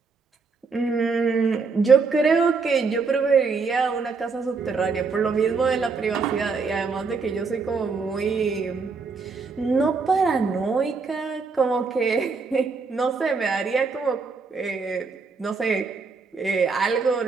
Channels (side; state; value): left; quieter; 4.7 dB